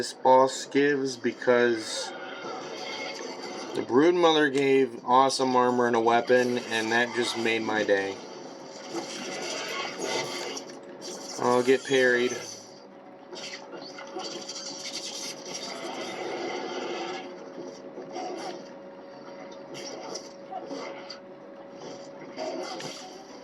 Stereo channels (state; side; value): identical; both; correlation 1.00